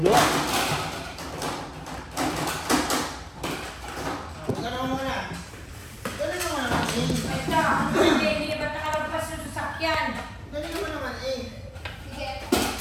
Huwag ka naman muna. Dali naman naman, eh. Ito, hindi ba't nakalagpas yung sasakyan? Dali naman naman, eh. Sige.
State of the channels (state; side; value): identical; both; correlation 1.00